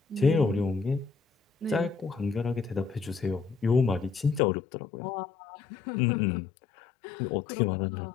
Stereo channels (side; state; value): right; drops out; at 4.4 s